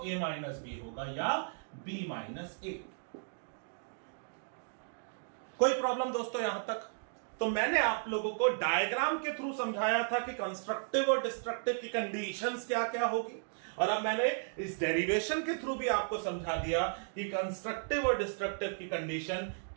a माइनस b होगा या b माइनस a. कोई प्रॉब्लम दोस्तों यहां तक? तो मैंने आप लोगों को डायग्राम के थ्रू समझाया था कि कंस्ट्रक्टिव और डिस्ट्रक्टिव की कंडीशंस क्या क्या होगी, और अब मैंने इस डेरिवेशन के थ्रू भी आपको समझा दिया कि कंस्ट्रक्टिव और डिस्ट्रक्टिव की कंडीशन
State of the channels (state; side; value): silent; left; digital silence